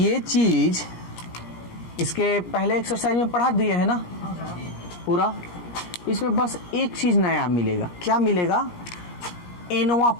चीज इसके पहले एक्सरसाइज में पढ़ा दिए है ना पूरा। इसमें बस एक चीज नया मिलेगा। क्या मिलेगा? एनवा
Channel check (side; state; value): right; late; 17 ms